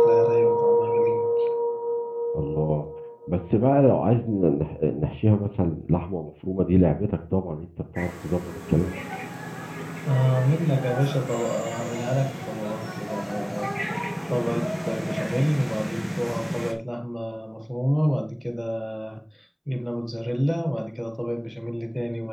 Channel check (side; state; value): both; identical; correlation 1.00